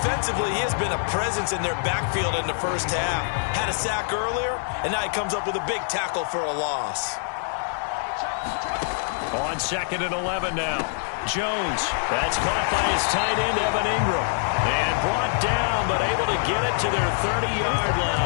he has been a presence in their backfield in the first half. Had a sack earlier, and now he comes up with a big tackle for a loss. On 2nd and 11 now. Jones. That's caught by his tight end, Evan Ingram. And brought down, but able to get it to their 30-yard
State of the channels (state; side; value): silent; right; digital silence